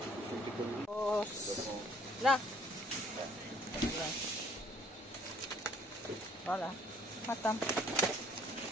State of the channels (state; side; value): normal; both; correlation 0.60